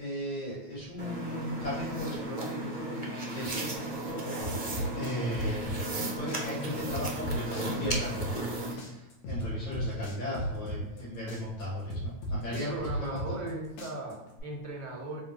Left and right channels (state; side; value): late; right; 9.2 ms